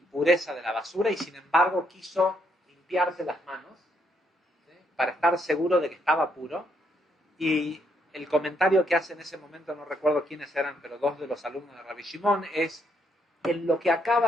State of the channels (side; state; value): both; normal; correlation 0.74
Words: de la basura y sin embargo quiso limpiarse las manos, ¿sí? Para estar seguro de que estaba puro. Y el comentario que hace en ese momento, no recuerdo quiénes eran, pero dos de los alumnos de Rabbi Shimon, es: en lo que